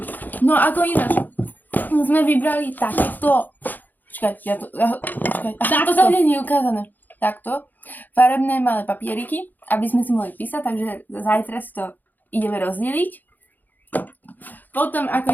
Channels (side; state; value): right; late; 0.085 ms